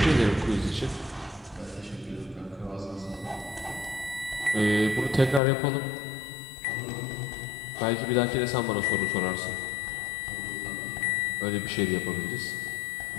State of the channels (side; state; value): right; drops out; at 5.4 s